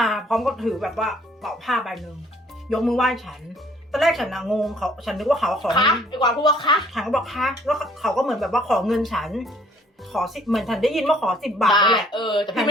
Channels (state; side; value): normal; both; correlation 0.60